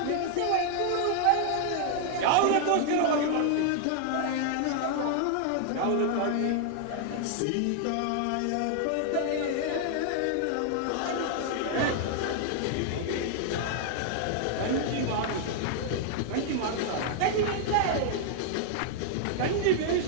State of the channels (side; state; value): both; different; correlation 0.00